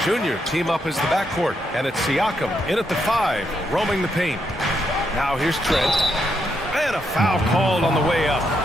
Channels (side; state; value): both; normal; correlation 0.79